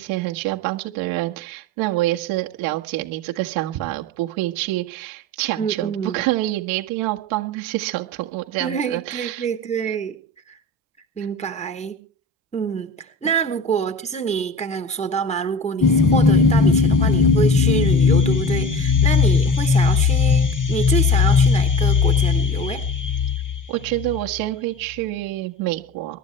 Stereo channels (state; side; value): normal; both; correlation 0.33